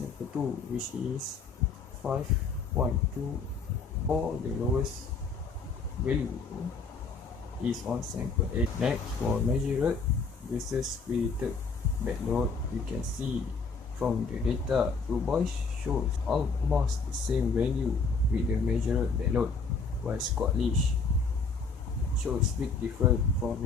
2, which is 5.2, or the lowest value is on sample 8. Next, for measured versus created bed load, you can see from the data, Du Bois shows almost the same value with the measured bed load, while Scottish shows big difference for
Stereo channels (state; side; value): quieter; right; 4.6 dB